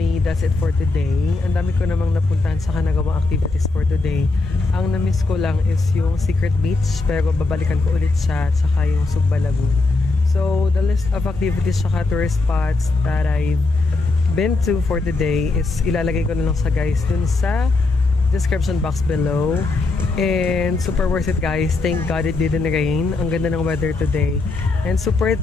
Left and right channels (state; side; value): quieter; right; 3.5 dB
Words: that's it for today. Ang dami ko namang napuntahan sa nagawang activities for today. Ang na-miss ko lang is yung Secret Beach, pero babalikan ko ulit siya, tsaka yung Sugba Lagoon. So the list of activities tsaka tourist spots that I've been to for today is ilalagay ko na lang sa guys dun sa description box below. And super worth it guys. Thank God it didn't rain. Ang ganda ng weather today. And super